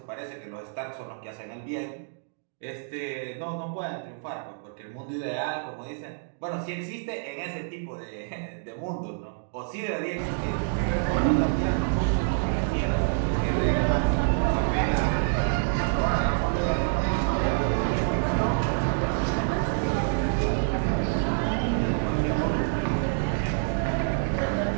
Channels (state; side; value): silent; left; digital silence